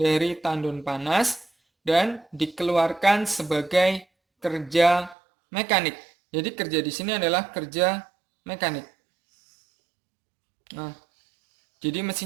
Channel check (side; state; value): left; drops out; at 5.2 s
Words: tandon panas dan dikeluarkan sebagai kerja mekanik. Jadi kerja di sini adalah kerja mekanik. Nah, jadi